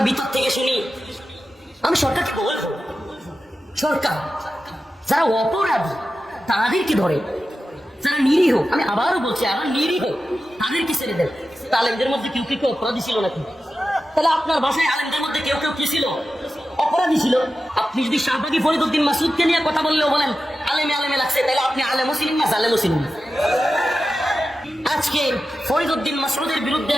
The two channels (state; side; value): normal; both; correlation 0.92